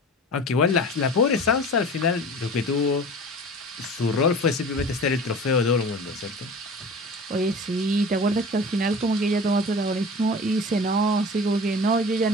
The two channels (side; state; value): both; normal; correlation 0.38